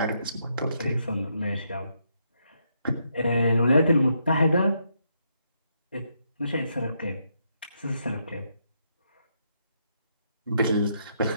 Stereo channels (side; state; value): both; inverted; correlation -0.77